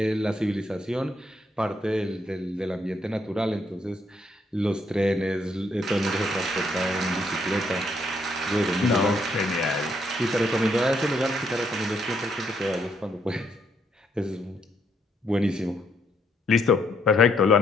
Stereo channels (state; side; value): normal; both; correlation 0.73